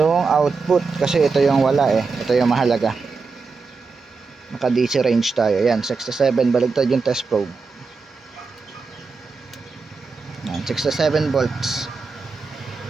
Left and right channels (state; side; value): quieter; left; 4.5 dB